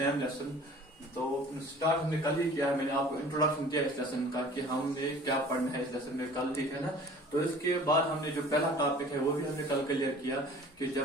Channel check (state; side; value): normal; both; correlation 0.47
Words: lesson. तो start हमने कल ही किया है. मैंने आपको introduction दिया इस lesson का कि हमने क्या पढ़ना है इस लेसन में कल, ठीक है ना. तो इसके बाद हमने जो पहला टॉपिक है वो भी हमने कल क्लियर किया कि